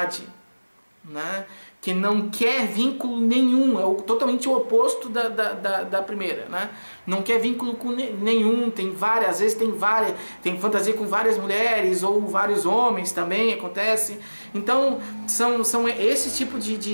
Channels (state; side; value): inverted; both; correlation -1.00